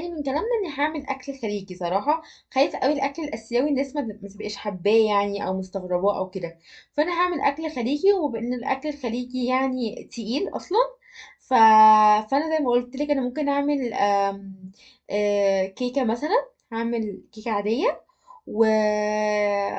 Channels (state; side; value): identical; both; correlation 1.00